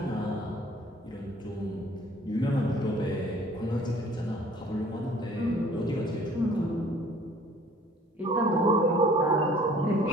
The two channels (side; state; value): both; normal; correlation 0.54